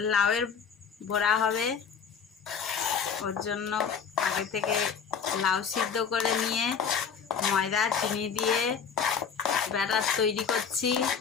লাউয়ের বড়া হবে। ওর জন্য আগে থেকে লাউ সিদ্ধ করে নিয়ে ময়দা চিনি দিয়ে ব্যাটার তৈরি করছি।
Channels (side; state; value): right; quieter; 6.5 dB